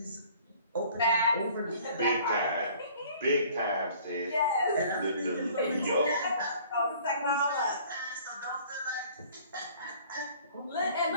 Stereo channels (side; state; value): both; inverted; correlation -0.52